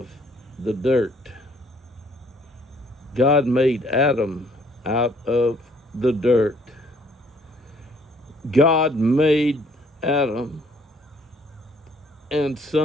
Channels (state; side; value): normal; both; correlation 0.62